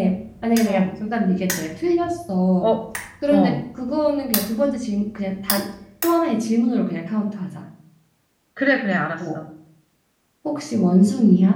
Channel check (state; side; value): identical; both; correlation 1.00